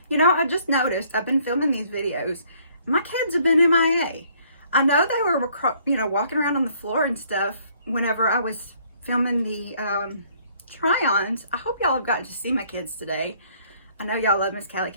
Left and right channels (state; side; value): inverted; both; correlation -0.63